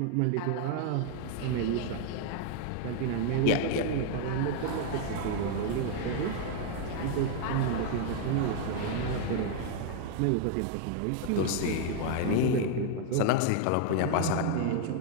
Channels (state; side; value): different; both; correlation 0.00